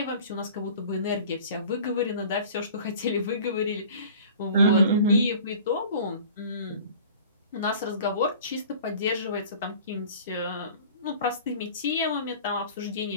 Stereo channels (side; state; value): both; inverted; correlation -0.44